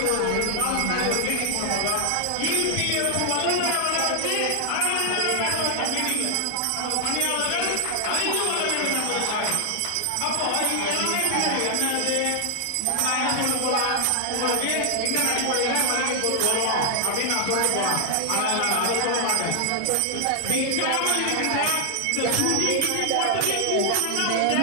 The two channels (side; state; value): both; different; correlation 0.00